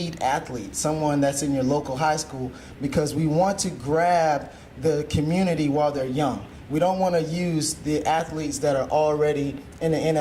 athlete, someone that's in your local high school, because we want to grab the community while they're young. We don't want to use the athletes that are already in the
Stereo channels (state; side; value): identical; both; correlation 1.00